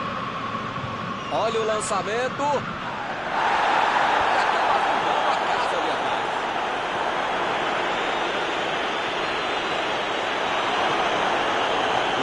Olha o lançamento. E acaba arrumando a casa ali atrás.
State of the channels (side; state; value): left; noise; rumble, 25 dB below the sound